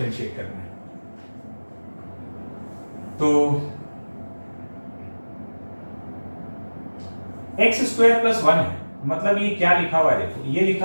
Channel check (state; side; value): inverted; both; correlation -1.00